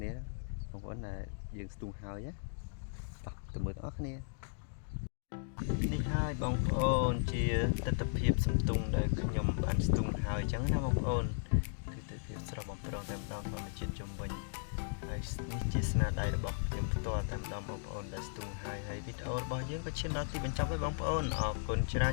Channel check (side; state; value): right; silent; digital silence